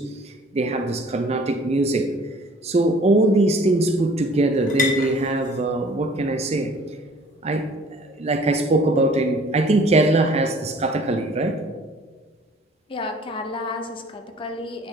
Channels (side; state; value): both; normal; correlation 0.52